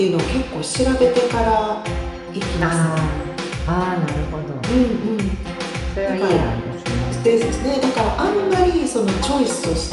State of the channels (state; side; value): identical; both; correlation 1.00